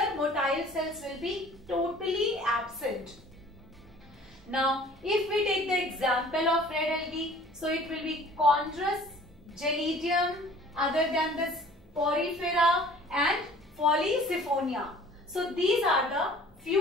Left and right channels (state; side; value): normal; both; correlation 0.50